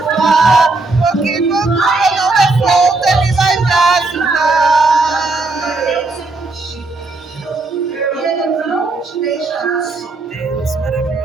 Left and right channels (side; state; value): left; quieter; 3.4 dB